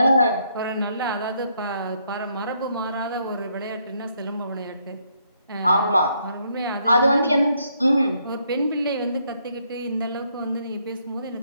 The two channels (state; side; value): inverted; both; correlation -0.72